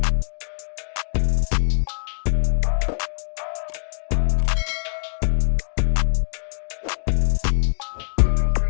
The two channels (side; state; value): right; silent; digital silence